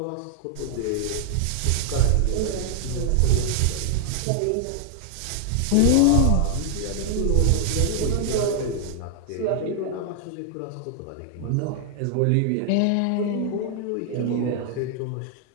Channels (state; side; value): different; both; correlation 0.00